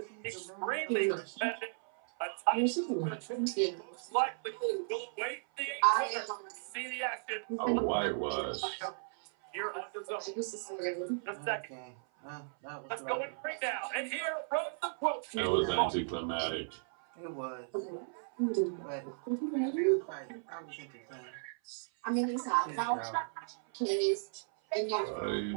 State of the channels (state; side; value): silent; left; 54 dB below the other